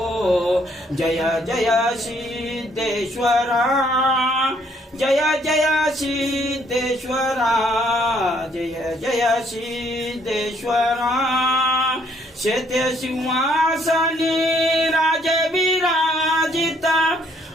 जय जय सिद्धेश्वरा जय जय सिद्धेश्वरा जय जय सिद्धेश्वरा शेते सिंहासनी राजविराजिता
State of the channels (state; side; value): normal; both; correlation 0.67